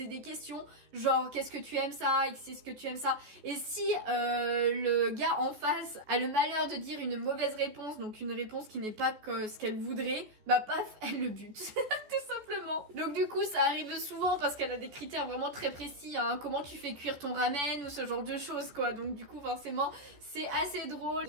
des questions, genre qu'est-ce que tu aimes ça, est-ce que tu aimes ça, et si le gars en face a le malheur de dire une mauvaise réponse, donc une réponse qui n'est pas ce qu'elle voudrait, paf, elle le bute, tout simplement. Donc du coup ça arrive souvent parce qu'elle a des critères vraiment très précis, hein, comment tu fais cuire ton ramen ou ce genre de choses quoi, donc du coup forcément c'est assez drôle.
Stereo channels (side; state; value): left; late; 14 ms